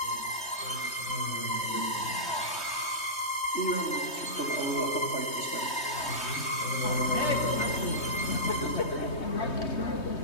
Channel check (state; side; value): late; right; 3.2 ms